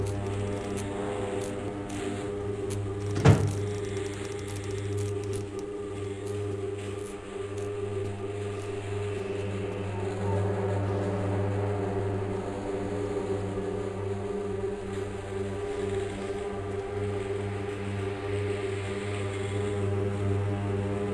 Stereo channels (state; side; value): identical; both; correlation 1.00